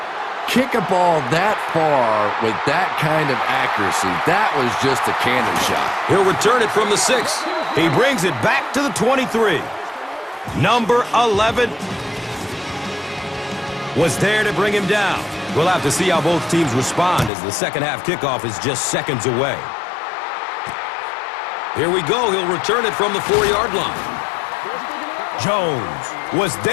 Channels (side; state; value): right; drops out; at 17.3 s